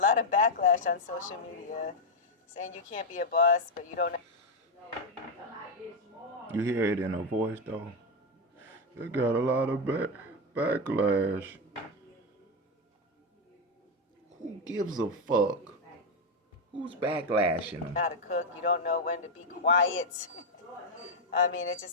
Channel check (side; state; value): both; normal; correlation 0.04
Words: of backlash on social media, saying you can't be a boss, but you don't know. You hear it in her voice though. It got a lot of backlash. Who gives a fuck? Who's backlashing them? How to cook, you don't know when to be quiet. I mean, it